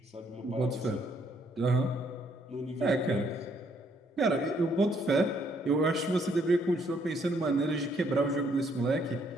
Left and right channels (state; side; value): normal; both; correlation 0.69